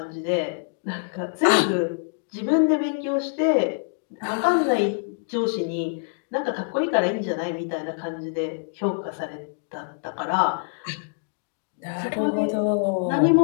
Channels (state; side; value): silent; right; 62 dB below the other